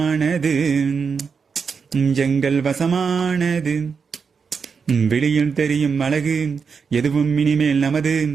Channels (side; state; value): left; quieter; 5.7 dB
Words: எங்கள் வசமானது விழியில் தெரியும் அழகு எதுவும் இனிமேல் நமது